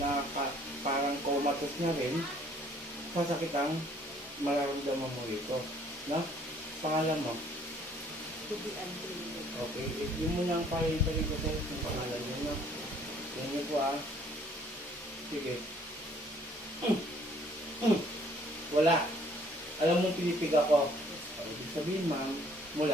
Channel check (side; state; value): both; normal; correlation 0.60